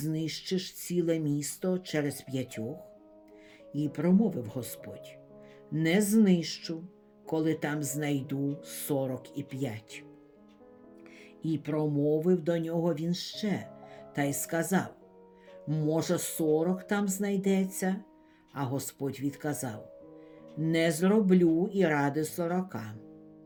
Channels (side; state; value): both; identical; correlation 1.00